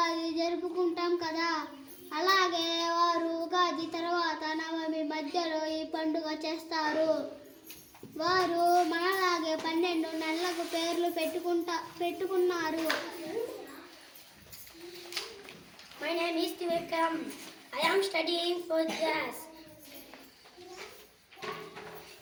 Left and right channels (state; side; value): identical; both; correlation 1.00